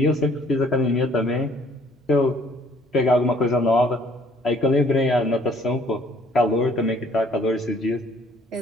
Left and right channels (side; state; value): both; normal; correlation 0.60